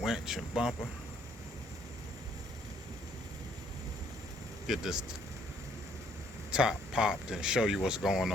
winch and bumper. Get this top popped and show you what's going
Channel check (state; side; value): normal; both; correlation 0.65